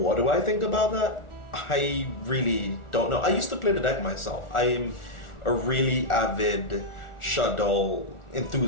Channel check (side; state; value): right; late; 1.4 ms